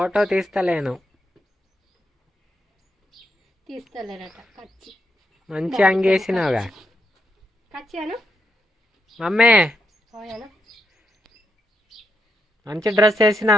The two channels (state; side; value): normal; both; correlation 0.81